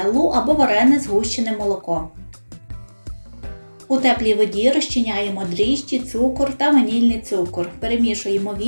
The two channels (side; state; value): both; inverted; correlation -1.00